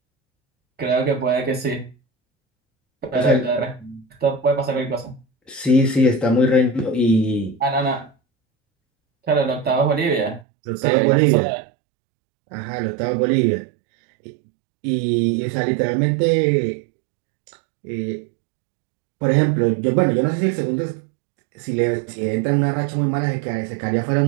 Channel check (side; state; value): left; drops out; at 10.5 s